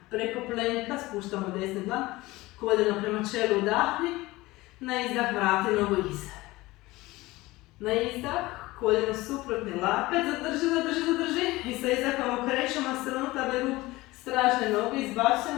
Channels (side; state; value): right; quieter; 19.8 dB